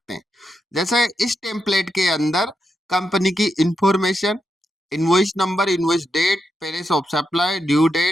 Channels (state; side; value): normal; both; correlation 0.85